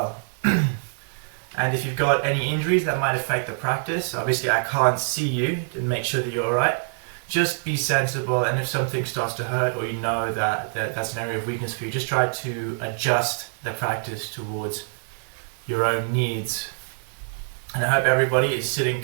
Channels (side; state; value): left; silent; 62 dB below the other